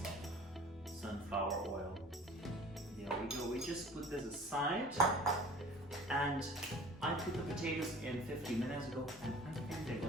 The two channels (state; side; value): normal; both; correlation 0.45